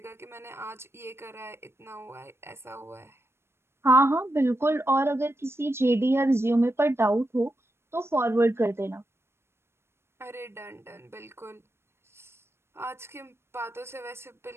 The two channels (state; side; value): late; left; 0.12 ms